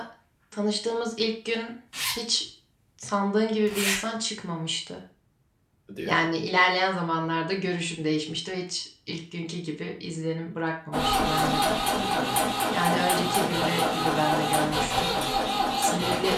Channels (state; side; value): identical; both; correlation 1.00